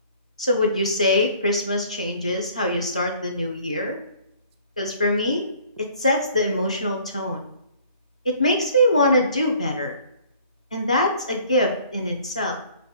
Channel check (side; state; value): both; inverted; correlation -0.54